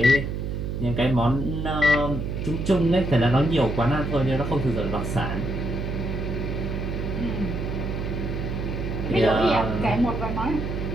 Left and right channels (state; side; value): noise; right; hum, 3 dB below the sound